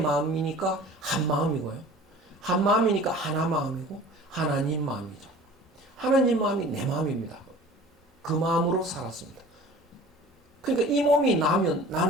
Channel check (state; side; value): normal; both; correlation 0.44